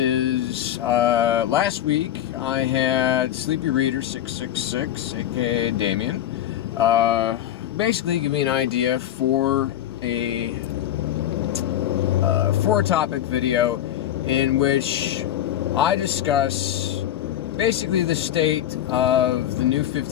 last week, I had Sleepy Reader 666, aka Damien, basically give me an idea for a topic video in which I discuss basically the state of the New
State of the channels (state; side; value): quieter; right; 11.7 dB